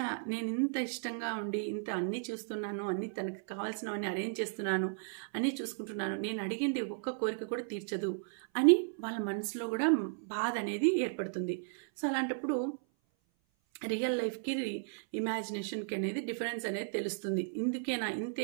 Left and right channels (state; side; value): silent; left; 54 dB below the other